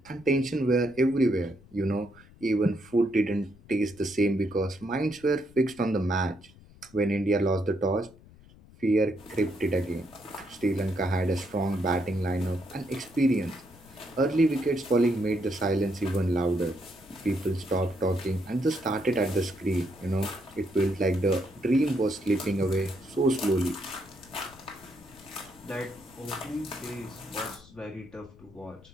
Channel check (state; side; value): noise; left; rumble, 24 dB below the sound